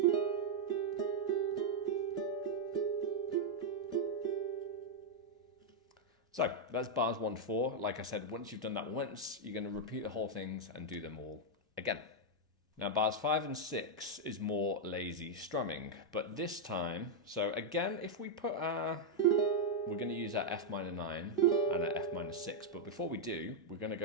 So that's bars 1 to 4. Like I said, once you've done that once, you're going to repeat the whole things and do them all again. Now bars 5 and 6 is more lazy strumming, but this time, so again, if we put our, we're going to use our F minor 9 and our F minor 6, but before we do, we're going to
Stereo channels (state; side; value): normal; both; correlation -0.02